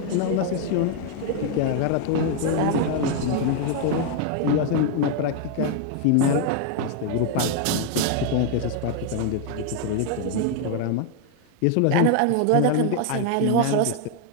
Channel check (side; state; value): both; different; correlation 0.00